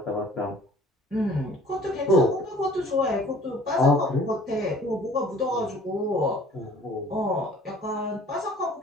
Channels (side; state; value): both; normal; correlation 0.51